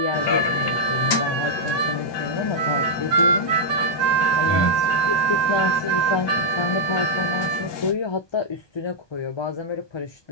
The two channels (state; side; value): late; right; 1.2 ms